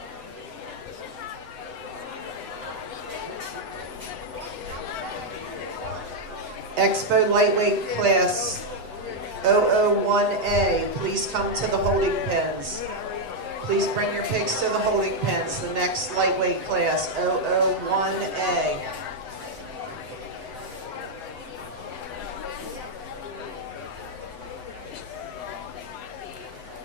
Expo lightweight class 001A, please come to the holding pens. Please bring your pigs to the holding pens. The next lightweight class 001A.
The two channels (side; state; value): left; late; 8.0 ms